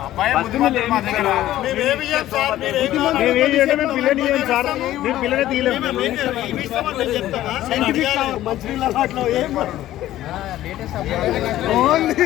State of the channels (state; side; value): quieter; right; 14.0 dB